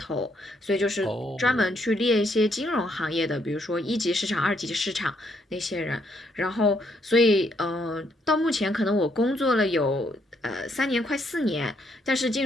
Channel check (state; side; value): normal; both; correlation 0.73